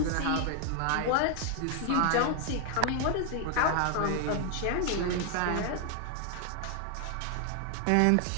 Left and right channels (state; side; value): different; both; correlation 0.00